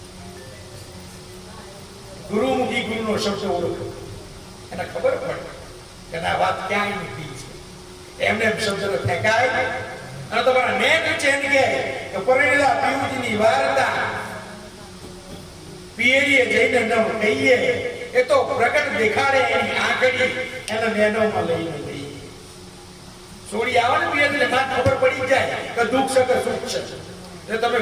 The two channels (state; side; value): identical; both; correlation 1.00